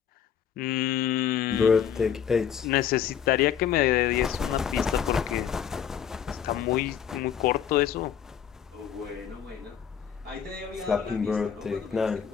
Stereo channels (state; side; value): quieter; right; 8.5 dB